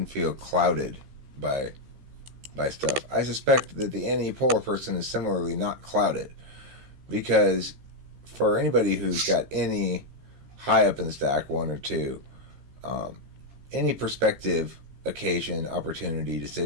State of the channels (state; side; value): late; left; 15 ms